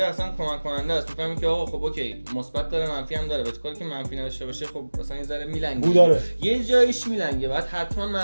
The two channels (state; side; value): inverted; both; correlation -1.00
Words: کمک کننده است. میفهمی که آقا خب اوکی مثبت داره منفی هم داره، ولی کاری که منفی نداشته باشه خب اصلا یه ذره میلنگه، یه جایش میلنگه، بعد حتما